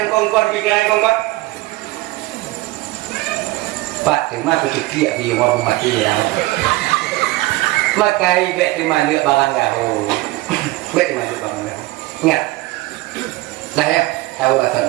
kongkon pikiran kongkon Pak terima kecil di orang mati dah. Maka ibet terima lihat barang gaul. Bet terima lihat barang gaul. Ingat. Dah ya, tahu bahasa.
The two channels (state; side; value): quieter; left; 19.8 dB